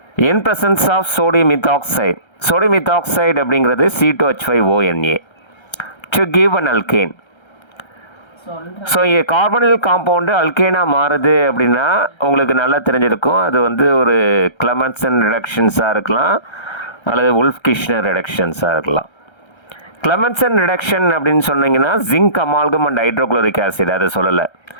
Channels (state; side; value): late; right; 1.3 ms